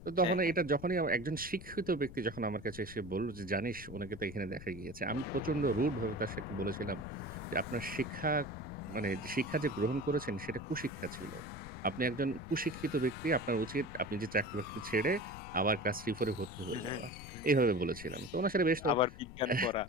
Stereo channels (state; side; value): noise; left; rumble, 14 dB below the sound